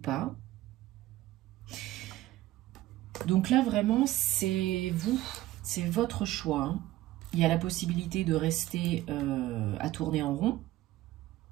Donc là, vraiment, c'est vous, c'est votre choix. Hein. Il y a la possibilité de rester à tourner en rond,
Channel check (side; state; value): left; quieter; 15.9 dB